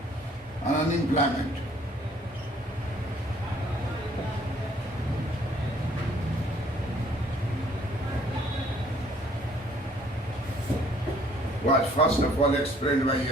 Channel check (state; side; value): normal; both; correlation 0.60